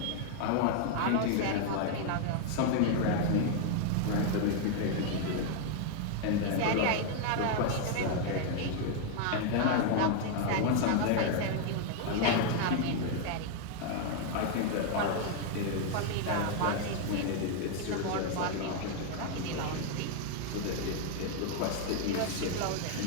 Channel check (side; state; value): both; different; correlation 0.00